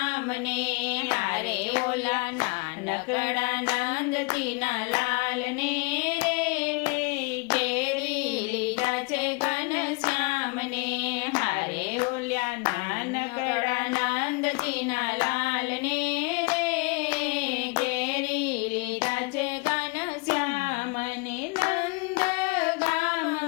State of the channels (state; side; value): quieter; right; 28.8 dB